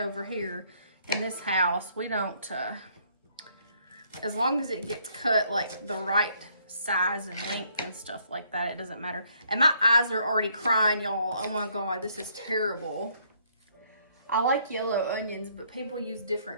here in this house. We don't, as long as it gets cut like the right size and length and stuff like that, it doesn't matter. And my eyes are already crying, y'all. Oh my God, this is terrible. I like yellow onions, but people use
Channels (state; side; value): inverted; both; correlation -0.67